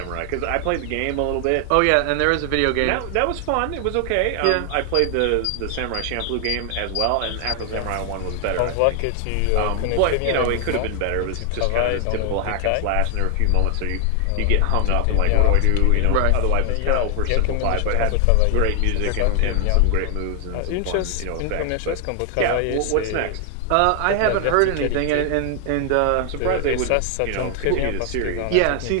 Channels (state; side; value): different; both; correlation 0.00